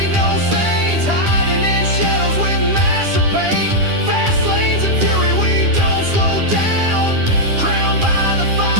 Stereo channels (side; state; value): left; late; 10 ms